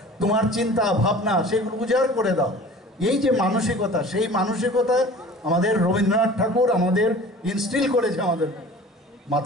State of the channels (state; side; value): normal; both; correlation 0.43